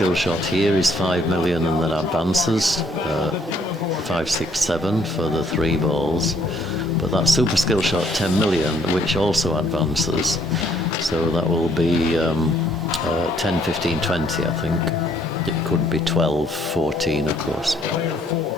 shot here is 5 million and then advances, 5, 6, 7 for the 3 balls. But that super skill shot 10 million, which also advances. So that will be 10, 15, 20, I think. It could be 12, 14, of course.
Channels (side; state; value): both; normal; correlation 0.66